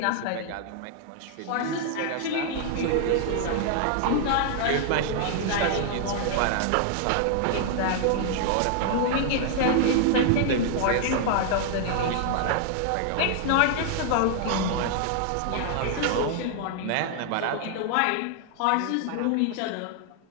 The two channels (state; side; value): different; both; correlation 0.00